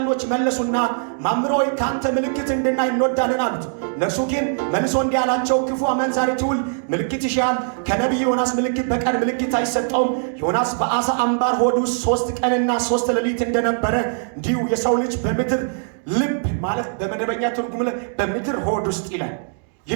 መለሱና መምህር ሆይ ከአንተ ምልክት እንድናይ እንወዳለን አሉት። እነርሱ ግን መልሶ እንዲህ አላቸው፣ ክፉ አመንዛሪ ትውልድ ምልክት ይሻል፣ ከነቢይ ዮናስ ምልክት በቀር ምልክት አይሰጠውም። ዮናስ በአሳ አምባር ሆድ ውስጥ 3 ቀንና 3 ሌሊት እንደነበረ እንዲሁ የሰው ልጅ በምድር ልብ ማለት በመደበኛ ትርጉም በምድር ሆድ ውስጥ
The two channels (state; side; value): silent; left; digital silence